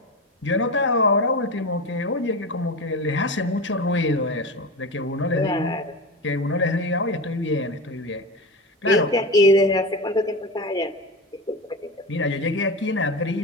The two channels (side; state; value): both; normal; correlation 0.24